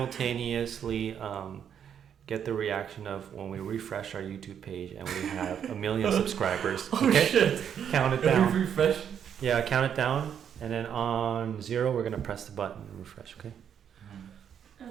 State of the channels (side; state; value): left; quieter; 8.5 dB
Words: get the reaction of when we refresh our YouTube page and we have 1 million subscribers. Oh Okay? shit! Count it down. Refresh. Yeah, count it down, and then on 0, we're gonna press the button and refresh. Okay.